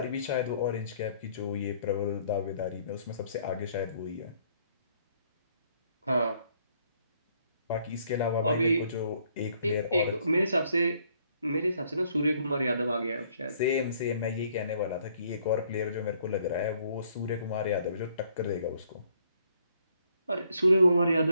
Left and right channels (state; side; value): inverted; both; correlation -0.66